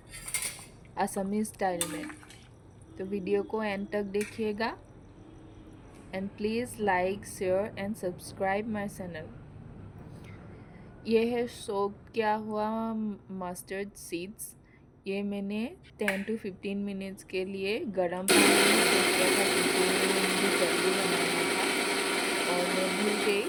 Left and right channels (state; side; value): identical; both; correlation 1.00